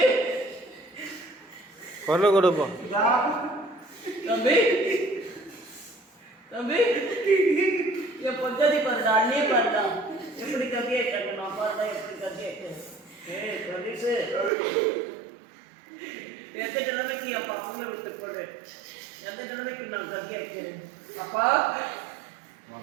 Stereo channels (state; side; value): drops out; left; at 14.5 s